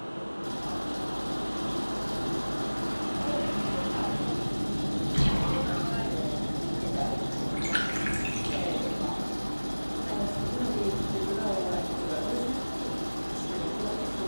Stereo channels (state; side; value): inverted; both; correlation -1.00